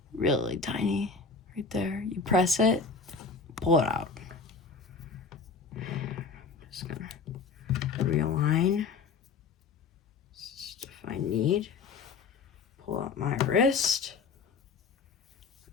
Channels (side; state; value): right; quieter; 4.8 dB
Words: Really tiny. Right there. You press it, pull it out. Just gonna realign. Just if I need. Pull out my wrist.